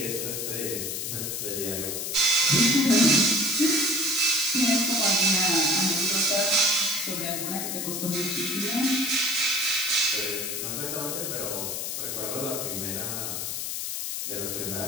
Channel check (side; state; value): left; noise; hiss, 3 dB below the sound